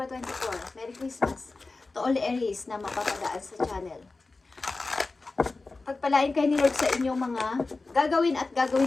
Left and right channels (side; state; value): right; quieter; 3.6 dB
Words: 24. Merry Christmas to all Aries na mapapadaan sa channel. Pagpalain kayo ni Lord sa inyong mga gagawin at